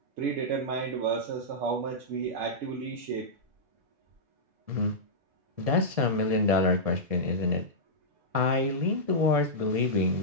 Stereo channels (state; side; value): late; left; 1.7 ms